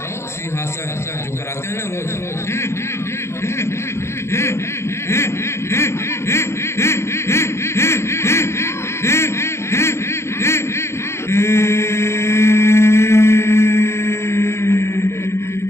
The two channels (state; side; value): late; right; 0.13 ms